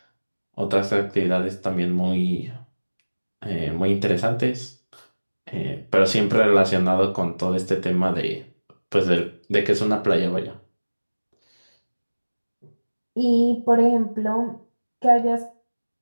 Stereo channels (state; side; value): inverted; both; correlation -1.00